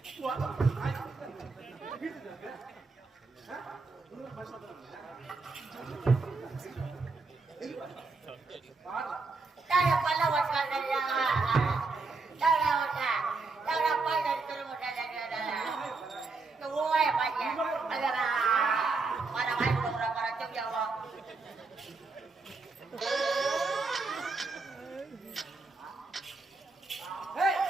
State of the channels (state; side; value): quieter; left; 3.9 dB